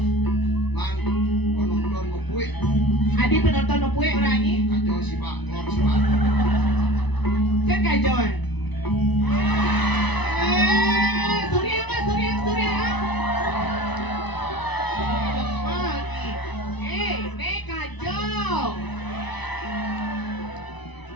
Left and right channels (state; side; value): late; right; 1.0 ms